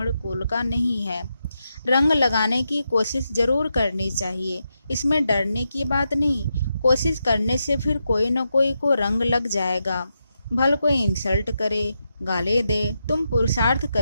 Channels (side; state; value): both; inverted; correlation -0.85